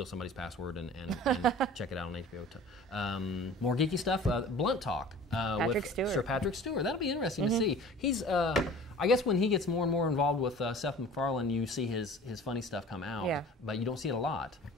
somebody's password and check it out on HBO. More geeky stuff. Blunt Talk with Stewart. Sir Patrick Stewart. That'll be interesting to see. He's I guess when he gets more and more involved with Seth MacFarlane, you see his funny stuff come out. Yeah. But you don't see it a lot.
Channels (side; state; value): both; normal; correlation 0.43